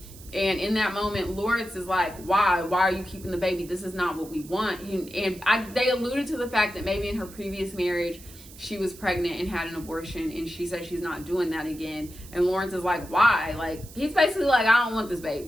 And in that moment, Lawrence is like, why are you keeping the baby? This is not what we want. They alluded to the fact that maybe in her previous marriage she was pregnant and had an abortion, and she said she's not doing that again. And Lawrence is like, why? Like, he's basically like, I don't want this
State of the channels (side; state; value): right; noise; hiss, 19 dB below the sound